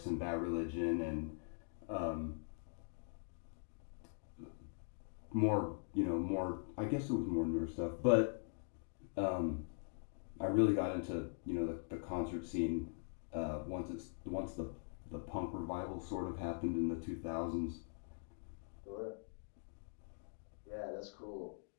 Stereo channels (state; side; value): silent; right; digital silence